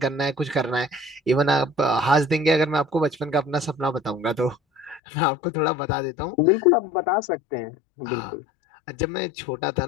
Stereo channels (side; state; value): right; drops out; at 5.0 s